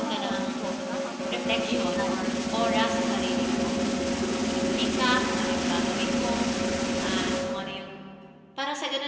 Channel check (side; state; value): both; identical; correlation 1.00